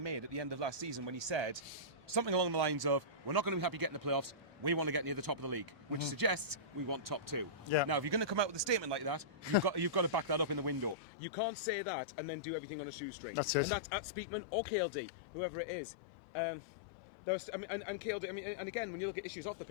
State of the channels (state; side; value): drops out; right; at 11.0 s